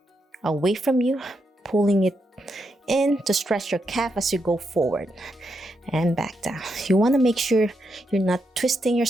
away from you, pulling it in to stretch your calf as you go forward and back down. You want to make sure you're not twisting your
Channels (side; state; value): both; normal; correlation 0.82